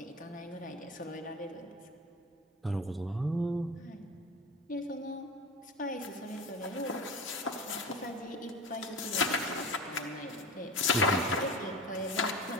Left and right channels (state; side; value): normal; both; correlation 0.31